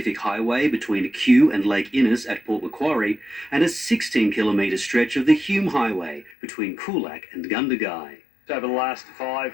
Highway between Kew and Lake Innes at Port Macquarie, and a 16-kilometre stretch of the Hume Highway between Coolac and Gundagai. Over the last 5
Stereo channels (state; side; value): drops out; right; at 6.4 s